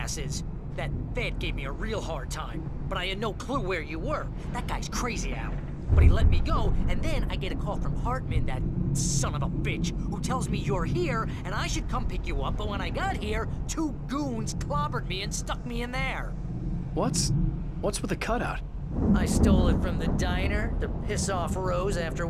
that Fed gave me a real hard time, but I had no clue where you were. That guy's crazy, Al. But he let me go, and then I get a call from Hartman, that son of a bitch, who tells me you're here, and I should come pick you up, but when I got here, 2 goons clobbered me and stuck me in there. What's with the cutout? I stole it from the diner to piss off Rose after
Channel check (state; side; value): identical; both; correlation 1.00